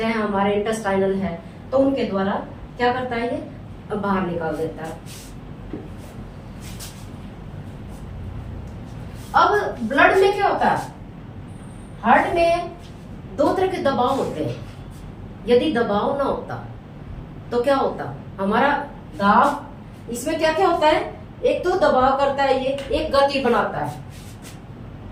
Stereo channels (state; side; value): identical; both; correlation 1.00